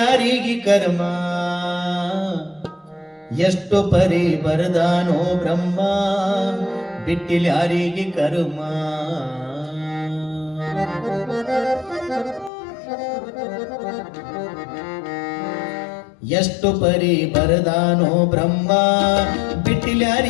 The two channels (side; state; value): right; drops out; at 12.5 s